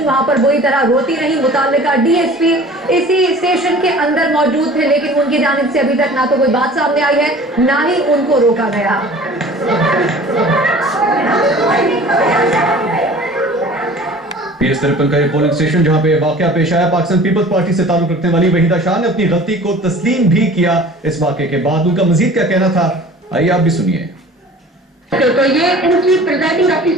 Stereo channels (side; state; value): both; normal; correlation 0.45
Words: वहां पर बुरी तरह रोती रही। मुताल्लिका डीएसपी इसी स्टेशन के अंदर मौजूद थे, लेकिन उनकी जानिब से अभी तक ना तो कोई बात सामने आई है ना ही उनको रोका गया। PS53 का ये पोलिंग स्टेशन जहां पे वाकया पेश आया, पाकिस्तान पीपल्स पार्टी से ताल्लुक रखने वाली वहीदा शाह ने अपनी गलती को तस्लीम भी किया। इस वाकये के बाद उनका मजीद क्या कहना था, आइए आप भी सुनिए। तो ये इनकी प्रिजाइडिंग